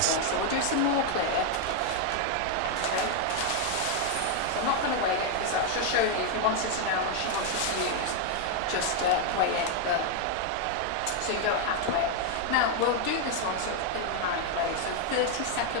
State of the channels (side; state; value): both; different; correlation 0.01